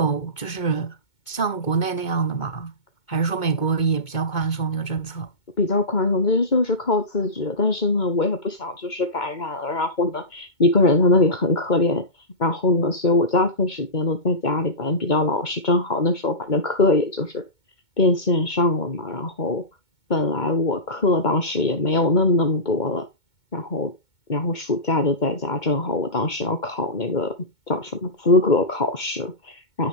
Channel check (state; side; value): late; right; 2.2 ms